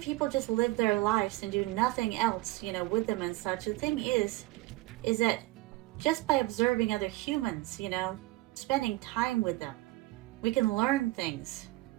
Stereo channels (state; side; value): quieter; left; 20.1 dB